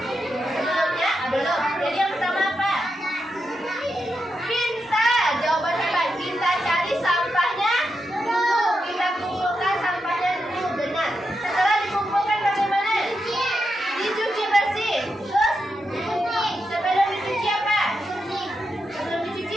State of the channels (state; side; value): normal; both; correlation 0.86